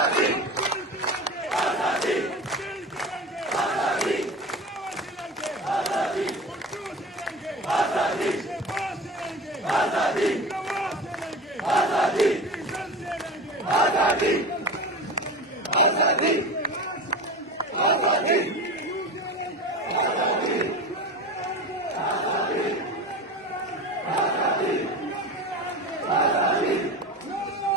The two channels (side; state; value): both; normal; correlation 0.30